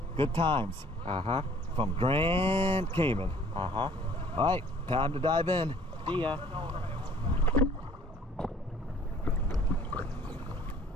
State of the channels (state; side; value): normal; both; correlation 0.55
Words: Good times. Uh-huh. From Grand Cayman. Uh-huh. All right, time to dive in. See ya.